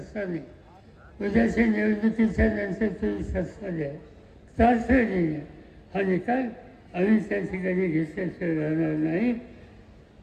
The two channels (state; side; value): identical; both; correlation 1.00